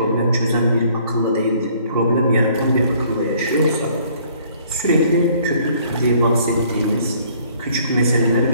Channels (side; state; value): both; inverted; correlation -0.60